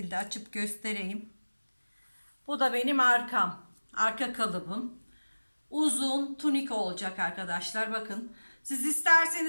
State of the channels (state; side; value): inverted; both; correlation -1.00